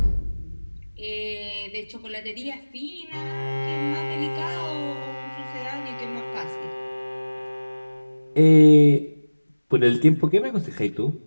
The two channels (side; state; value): both; inverted; correlation -1.00